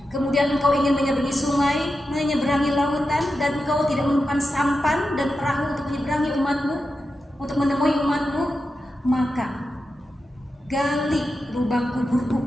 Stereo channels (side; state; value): both; normal; correlation 0.90